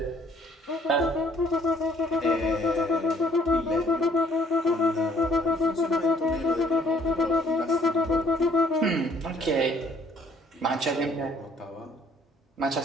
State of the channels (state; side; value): normal; both; correlation 0.61